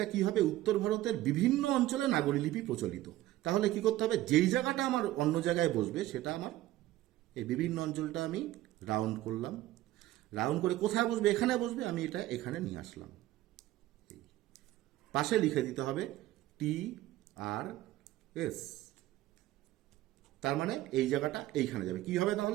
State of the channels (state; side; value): quieter; left; 15.5 dB